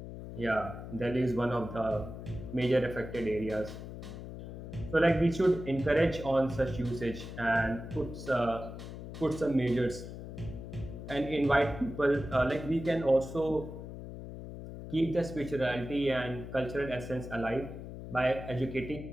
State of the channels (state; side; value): noise; left; hum, 10 dB below the sound